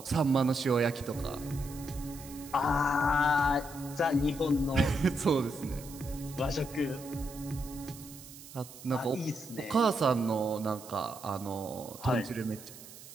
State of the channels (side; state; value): right; noise; hiss, 16 dB below the sound